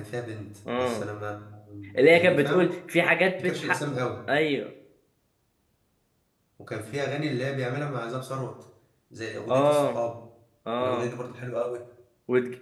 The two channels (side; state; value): both; identical; correlation 1.00